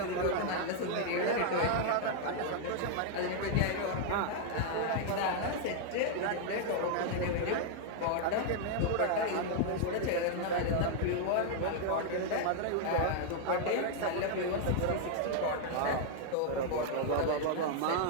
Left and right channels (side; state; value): both; different; correlation 0.00